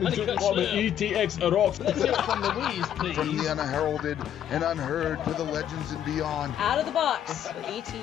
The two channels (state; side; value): quieter; right; 10.2 dB